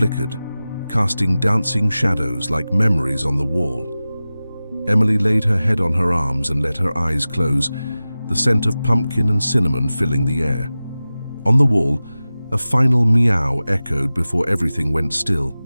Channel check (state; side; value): inverted; both; correlation -0.96